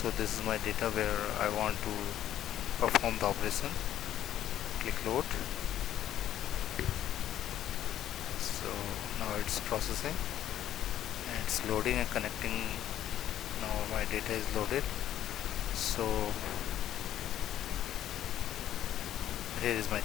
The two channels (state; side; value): quieter; right; 11.7 dB